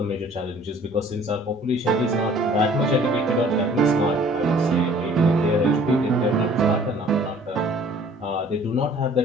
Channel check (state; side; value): normal; both; correlation 0.53